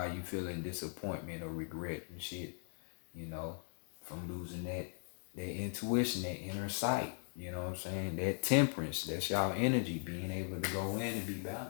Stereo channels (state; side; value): silent; right; 52 dB below the other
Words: you feeling disappointment or regret and shit, from losing that intuition, that inner sight, you know what I'm saying? That temperance, that's y'all energy, being able to go in and be